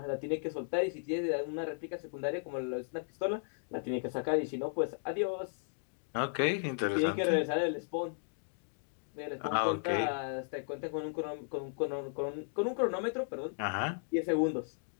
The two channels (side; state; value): right; silent; digital silence